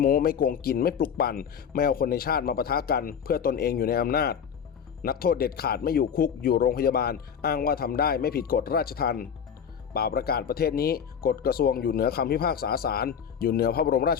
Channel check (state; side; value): quieter; right; 7.5 dB